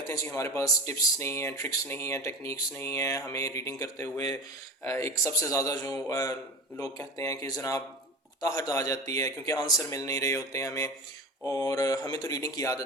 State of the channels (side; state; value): both; normal; correlation 0.32